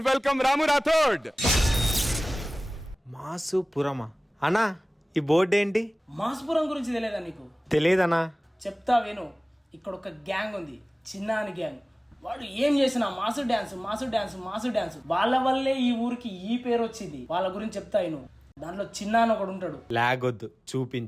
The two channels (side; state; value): both; normal; correlation 0.98